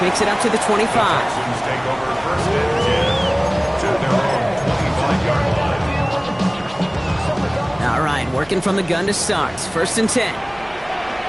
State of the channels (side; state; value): right; noise; hum, 23 dB below the sound